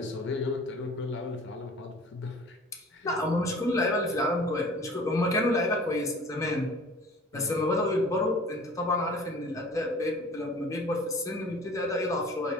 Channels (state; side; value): normal; both; correlation 0.46